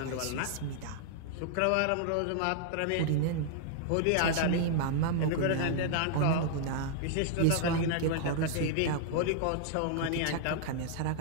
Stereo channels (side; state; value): both; different; correlation -0.01